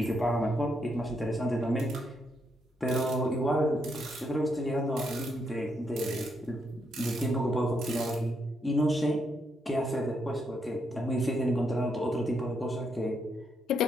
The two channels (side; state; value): both; normal; correlation 0.78